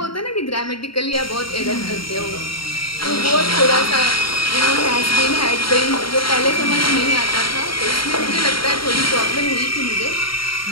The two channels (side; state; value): right; late; 0.74 ms